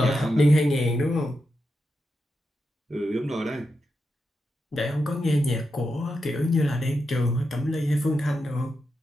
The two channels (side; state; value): both; normal; correlation 0.87